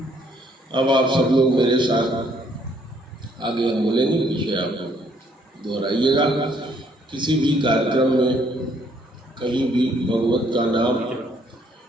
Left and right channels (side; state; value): both; normal; correlation 0.67